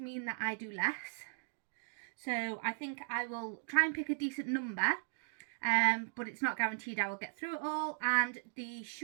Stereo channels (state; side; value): silent; left; digital silence